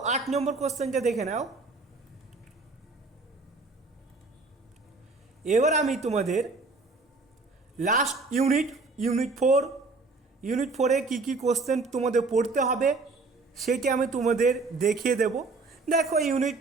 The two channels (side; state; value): left; quieter; 3.8 dB